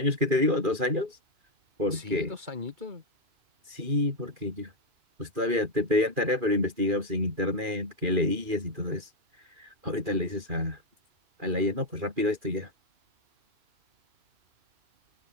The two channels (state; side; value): late; left; 2.4 ms